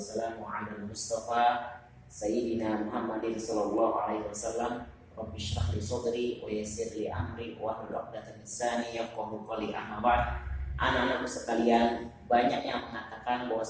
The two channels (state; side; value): identical; both; correlation 1.00